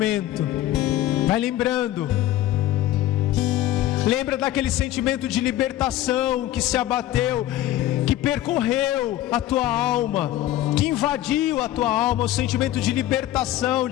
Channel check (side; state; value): right; quieter; 13.8 dB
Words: Vai lembrando. Lembra daquele sentimento de libertação que se abateu, que percorreu a tua alma, que invadiu a tua alma, o sentimento de libertação,